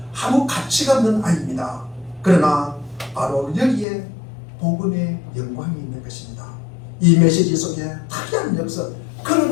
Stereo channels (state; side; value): drops out; right; at 3.9 s